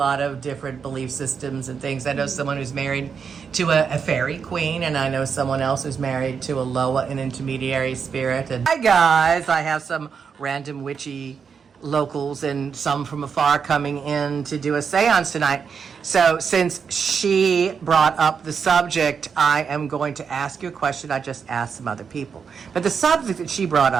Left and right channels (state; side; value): quieter; left; 6.3 dB